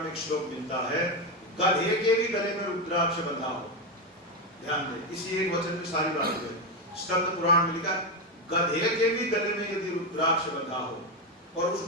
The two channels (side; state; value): both; normal; correlation 0.10